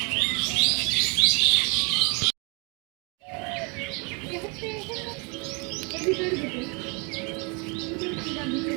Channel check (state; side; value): quieter; left; 32.5 dB